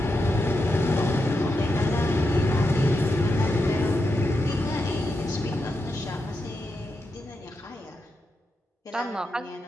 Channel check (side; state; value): both; normal; correlation 0.86